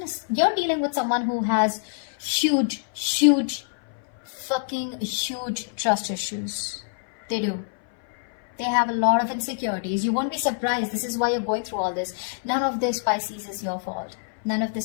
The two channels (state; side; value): silent; right; 58 dB below the other